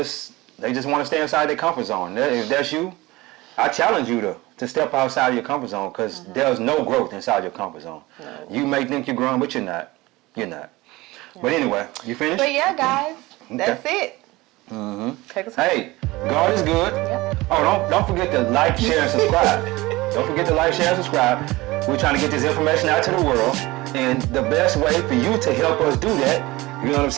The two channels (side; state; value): left; quieter; 20.5 dB